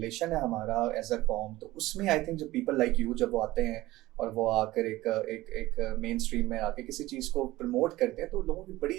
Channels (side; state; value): left; quieter; 17.6 dB